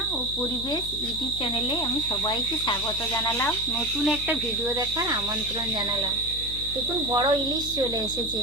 ও পরিবেশ ইউটিউব চ্যানেলে আমি সবাইকে স্বাগত জানালাম। নতুন একটা ভিডিও দেখার আমন্ত্রণ জানালাম। দেখুন, বড় ইলিশ চলে এসেছে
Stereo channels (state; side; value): noise; left; hum, 11 dB below the sound